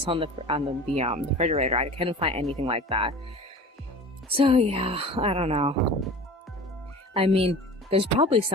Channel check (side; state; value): both; normal; correlation 0.38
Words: on the refrigerator. I couldn't find anything like that. So yeah, I don't know. I mean, there's probably